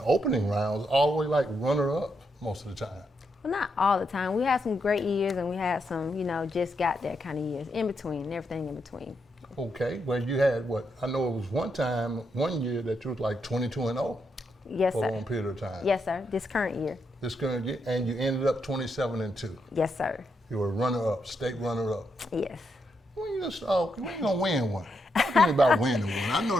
opening rounds, all the way like runner-up most of the time. Well, not all the time. We had some great years and we had some, just got there kind of years. In between, and everything in between. Okay, well you had what? I know it was one year that you was like 22-0. Yes, for sir. a long period of time. Yes, sir. This current year. This current year, and you ended up 27-2. Yes, sir. You were runner-up, state runner-up. Yes. When you gonna win one? Talk to me about winning one. I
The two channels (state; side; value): normal; both; correlation 0.81